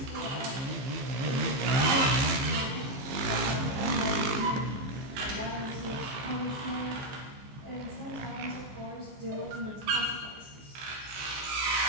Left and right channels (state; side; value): late; left; 15 ms